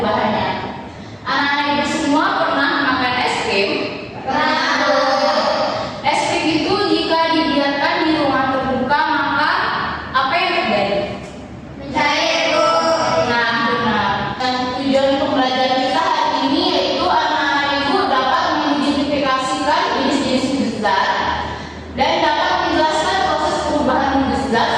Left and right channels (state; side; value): identical; both; correlation 1.00